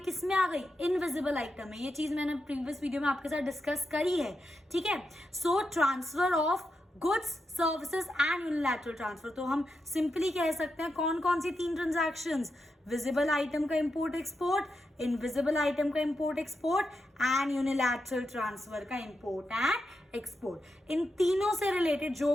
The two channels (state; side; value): normal; both; correlation 0.86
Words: में आ गई? इनविजिबल आइटम में. ये चीज मैंने प्रीवियस वीडियो में आपके साथ डिस्कस करी है. ठीक है, सो transfer of goods, services and unilateral transfer. तो हम सिंपली कह सकते हैं कौन कौन सी तीन ट्रांजैक्शंस? विजिबल आइटम का इंपोर्ट एक्सपोर्ट, इनविजिबल आइटम का import export and unilateral transfer का इंपोर्ट एंड एक्सपोर्ट. इन तीनों से रिलेटेड जो